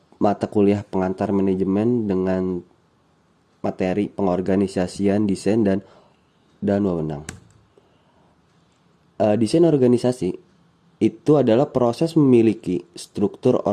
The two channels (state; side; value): identical; both; correlation 1.00